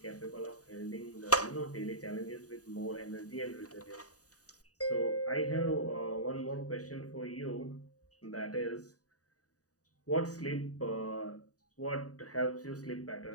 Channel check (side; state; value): right; late; 0.67 ms